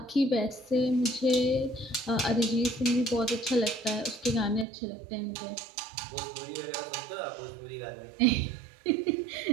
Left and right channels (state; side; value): drops out; left; at 4.7 s